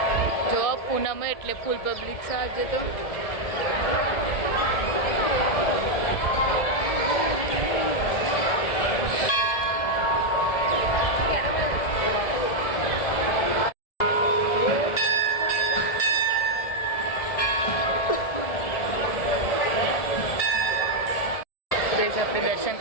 જો પૂનમ એટલે ફૂલ પબ્લિક સાજે તો આપણે દર્શન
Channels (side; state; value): right; late; 1.7 ms